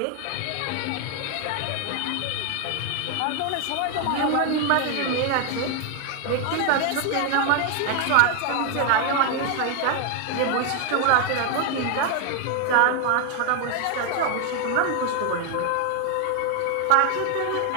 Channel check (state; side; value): different; both; correlation 0.01